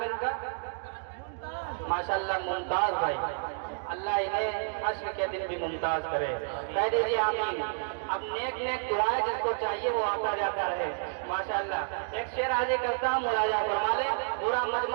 ہے ان کا؟ ماشاءاللہ ممتاز بھائی، اللہ انہیں حشر کے دن بھی ممتاز کرے، کہہ دیجیے آمین۔ اب نیک نیک دعائیں جس کو چاہیے وہ آتا جاتا رہے، ماشاءاللہ۔ ایک شعر حاضر کرتا ہوں، مراجعہ فرما لیں، پورا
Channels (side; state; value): left; silent; digital silence